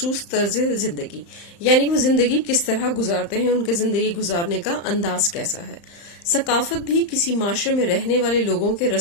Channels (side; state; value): right; late; 35 ms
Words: طرز زندگی، یعنی وہ زندگی کس طرح گزارتے ہیں، ان کے زندگی گزارنے کا انداز کیسا ہے. ثقافت بھی کسی معاشرے میں رہنے والے لوگوں کے